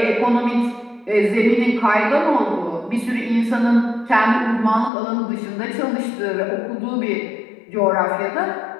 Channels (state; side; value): drops out; right; at 4.9 s